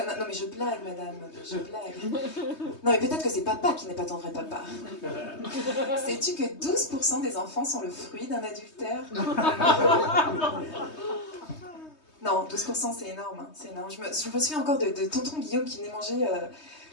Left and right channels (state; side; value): late; right; 3.2 ms